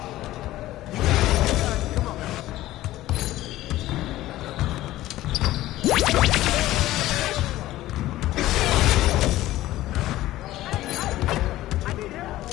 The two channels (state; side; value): quieter; right; 15.6 dB